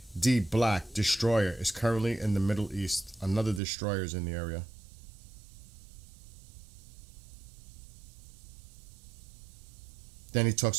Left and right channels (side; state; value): left; drops out; at 3.6 s